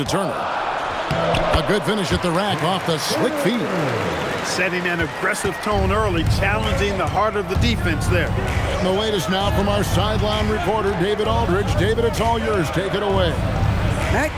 Turner. A good finish at the rack off the slick feed. Setting an aggressive tone early, challenging the heart of the defense there. And the latest now from our sideline reporter, David Aldridge. David, it's all yours. Take it away. Matt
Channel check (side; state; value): both; identical; correlation 1.00